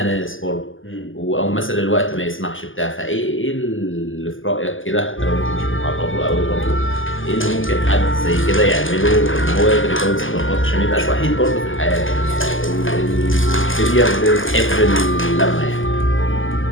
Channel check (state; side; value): late; right; 0.58 ms